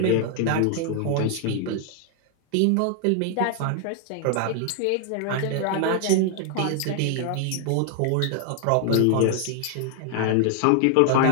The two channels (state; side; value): different; both; correlation 0.00